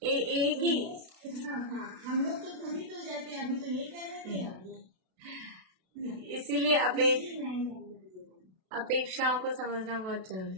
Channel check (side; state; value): left; late; 32 ms